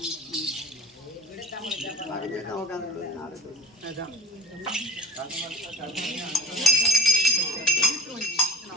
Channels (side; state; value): both; normal; correlation 0.39